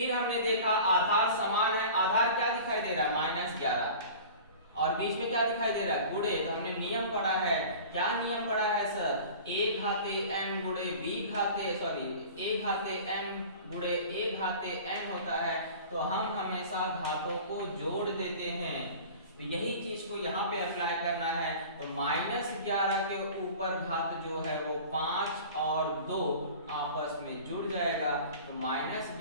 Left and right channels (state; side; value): inverted; both; correlation -0.40